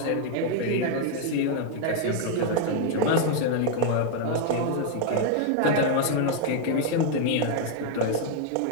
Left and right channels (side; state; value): both; different; correlation 0.00